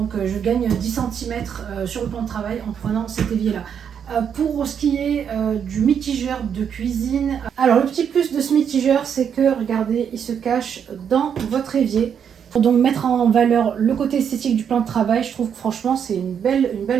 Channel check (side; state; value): left; quieter; 7.8 dB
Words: je gagne 10 cm sur le plan de travail en prenant cet évier là. Pour ce qui est du mitigeur de cuisine, alors le petit plus de ce mitigeur, c'est que regardez, il se cache dans votre évier. Pour donc mettre en valeur le côté esthétique du plan de travail, je trouve que franchement c'est une belle